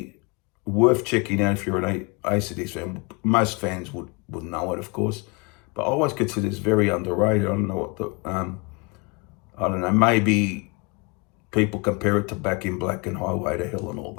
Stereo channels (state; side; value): quieter; right; 29.0 dB